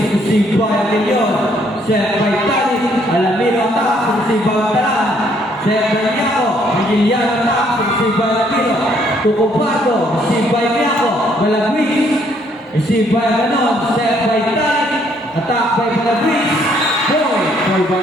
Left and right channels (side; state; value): both; normal; correlation 0.67